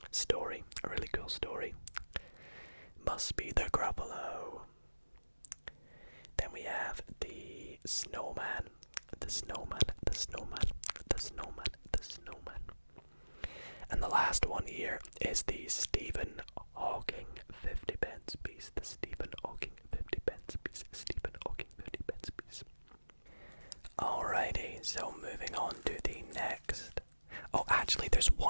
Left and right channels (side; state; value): both; inverted; correlation -1.00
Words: story, a really cool story. Must be the Gruffalo. Then we have the snowman, the snowman, the snowman, the snowman, the snowman. And the last one here is the Stephen Hawking 50 pence piece. The Stephen Hawking 50 pence piece. Stephen Hawking 50 pence piece. Alrighty, so moving on to the next. Oh, actually, there's